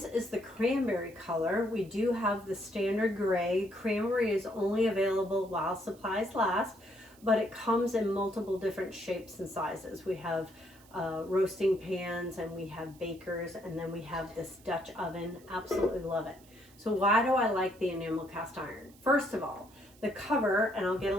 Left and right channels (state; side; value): noise; right; hiss, 26 dB below the sound